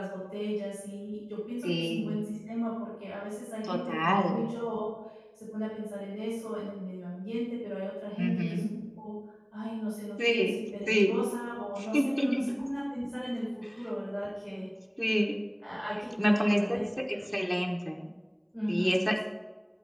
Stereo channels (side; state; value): both; identical; correlation 1.00